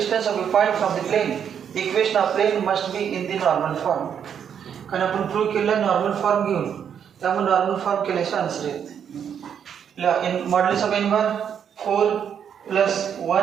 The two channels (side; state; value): left; quieter; 8.2 dB